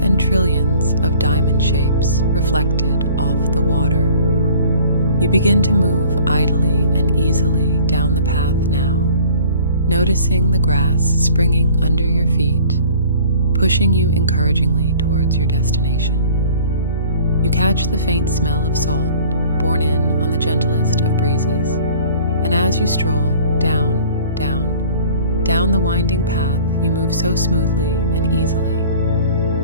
trillions of diamond shapes reflected off the water. You begin to move idly and easily down the path now, noticing the grass springing under your feet, pushing you encouragingly towards your destination. you catch the faint smell of salt borne in on the gentlest of breezes, and as you stroll down, down the winding path, you move so smoothly and easily.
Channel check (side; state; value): both; inverted; correlation -0.49